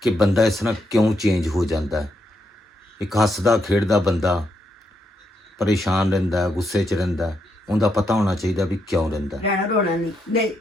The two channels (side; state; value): both; normal; correlation 0.80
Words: ਕਿ ਬੰਦਾ ਇਸ ਤਰ੍ਹਾਂ ਕਿਉਂ ਚੇਂਜ ਹੋ ਜਾਂਦਾ ਹੈ। ਇੱਕ ਹੱਸਦਾ ਖੇਡਦਾ ਬੰਦਾ ਪਰੇਸ਼ਾਨ ਰਹਿੰਦਾ, ਗੁੱਸੇ 'ਚ ਰਹਿੰਦਾ, ਉਹਦਾ ਪਤਾ ਹੋਣਾ ਚਾਹੀਦਾ ਵੀ ਕਿਉਂ ਰਹਿੰਦਾ। ਰਹਿਣਾ ਰੋਣਾ ਨਹੀਂ।